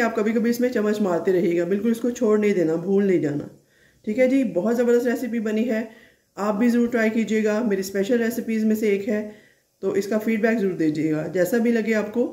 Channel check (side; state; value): both; identical; correlation 1.00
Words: आप कभी कभी इसमें चम्मच मारते रहिएगा, बिल्कुल इसको छोड़ नहीं देना, भूल नहीं जाना। ठीक है जी, बहुत ज़बरदस्त रेसिपी बनी है, आप भी ज़रूर ट्राई कीजिएगा। मेरी स्पेशल रेसिपीज़ में से एक है, तो इसका फीडबैक ज़रूर दीजिएगा। जैसा भी लगे आपको,